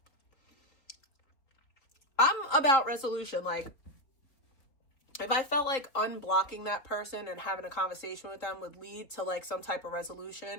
I'm about resolution. Like, if I felt like unblocking that person and having a conversation with them would lead to like some type of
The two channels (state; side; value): late; right; 3.6 ms